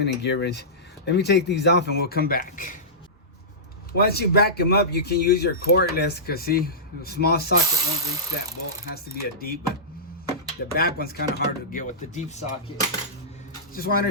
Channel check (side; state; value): both; normal; correlation -0.18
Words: and Gear Wrench. Let me take these off and we'll come back. Once you back them up, you can use your cordless, because see, the small socket won't reach that bolt. It has to be a deep, but the back one's kind of hard to get with the deep socket. Just wanted